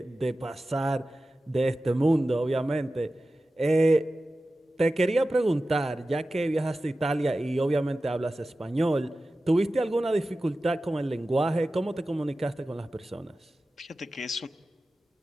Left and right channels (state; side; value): normal; both; correlation 0.95